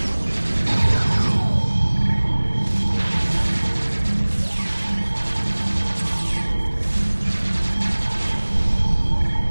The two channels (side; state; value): both; inverted; correlation -1.00